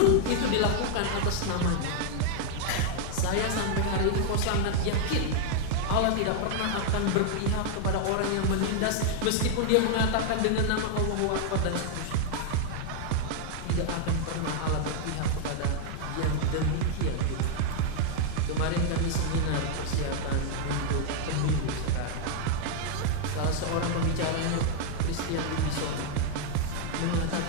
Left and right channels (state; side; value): different; both; correlation 0.00